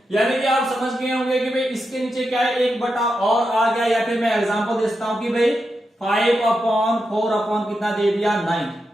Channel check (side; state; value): both; normal; correlation 0.87